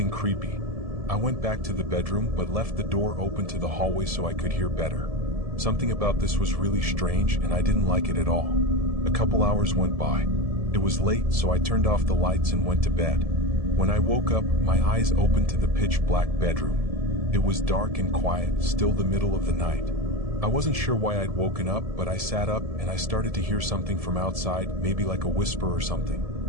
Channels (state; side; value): late; left; 1.7 ms